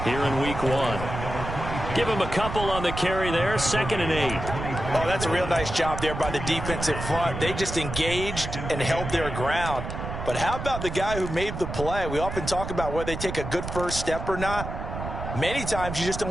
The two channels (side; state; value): right; noise; rumble, 6 dB below the sound